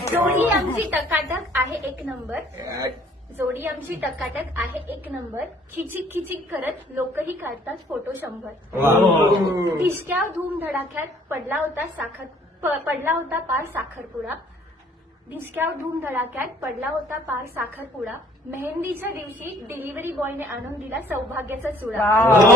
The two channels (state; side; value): normal; both; correlation 0.58